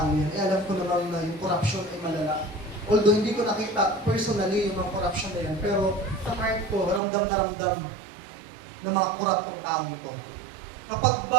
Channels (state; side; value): drops out; left; at 7.0 s